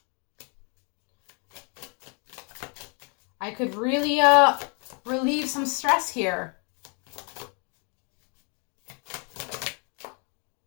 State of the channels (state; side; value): quieter; right; 36.3 dB